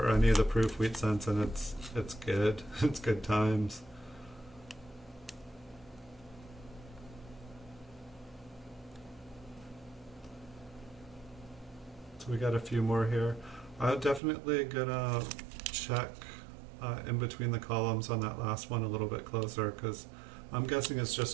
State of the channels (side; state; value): left; drops out; at 14.2 s